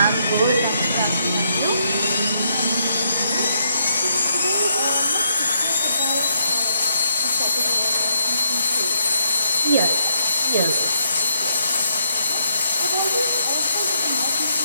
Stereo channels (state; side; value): inverted; both; correlation -0.76